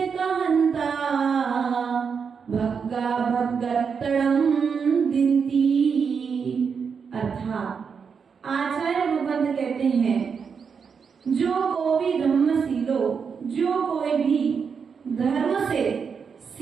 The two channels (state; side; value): quieter; left; 6.1 dB